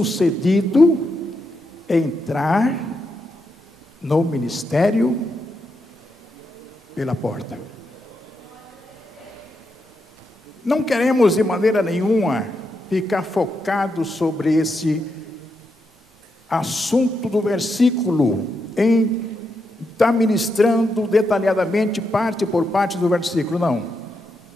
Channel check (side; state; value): both; normal; correlation 0.83